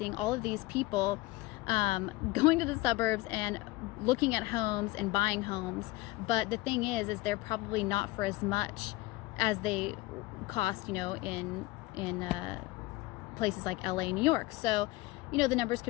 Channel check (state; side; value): quieter; right; 19.8 dB